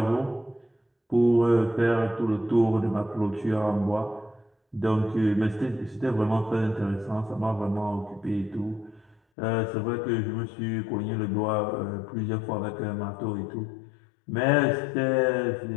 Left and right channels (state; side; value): drops out; right; at 9.2 s